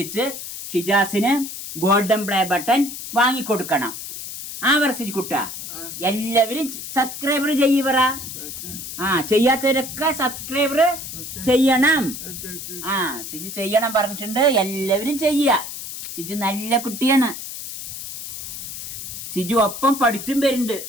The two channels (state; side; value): noise; left; hiss, 9 dB below the sound